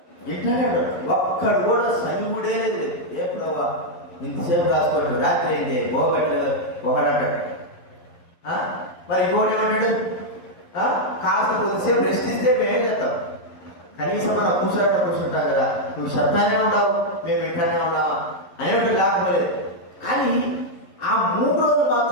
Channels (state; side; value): late; right; 11 ms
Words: ఎట్లానే ఉంటారు. ఒక్కడు కూడా సనిగుడే లేదు. ఏ ప్రభావ ఇంతసేపు రాసుకోండి, రాత్రి అయింది పోగట్లేదు ఒకడంటాడు. మరి ఇంకోటి ఏమంటాడు? కాస్త కొద్దిసేపు రెస్ట్ ఇస్తే మేమేం చేస్తాం? కనీసం మనం కూర్చుంటాం కదా, నువ్వు చెప్తానే ఉండవు, మేము వింటానే ఉన్నావా అనేవాడు లేకపోలేదు. కానీ ఆ 3 రోజులు